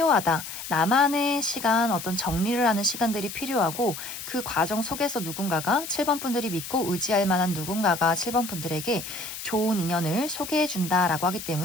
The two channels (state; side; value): noise; left; hiss, 9 dB below the sound